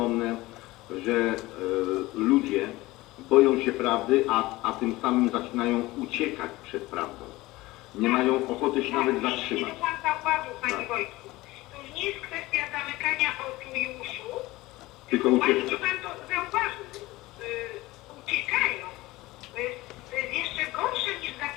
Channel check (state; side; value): quieter; right; 19.4 dB